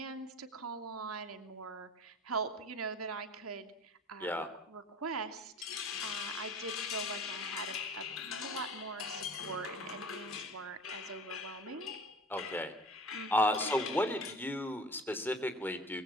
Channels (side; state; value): both; normal; correlation 0.41